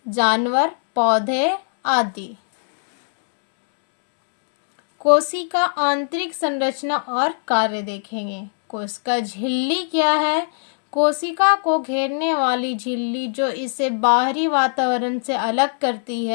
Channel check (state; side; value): silent; right; digital silence